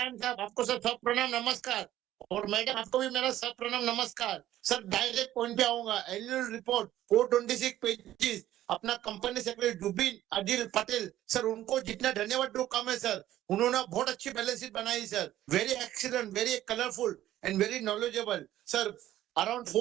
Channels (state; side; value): quieter; left; 13.5 dB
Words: साहब आपको sir सब प्रणाम नमस्कार और मैडम आपको भी मेरा सब प्रणाम नमस्कार सर डायरेक्ट पॉइंट पे आऊंगा एनुअल रिपोर्ट 426 पेजेस अपना company secretary Zubin Adil Patel sir उनको जितना धन्यवाद दो कम है सर उन्होंने बहुत अच्छी बैलेंस शीट बनाई sir very excellent very colourful and very knowledgeable sir around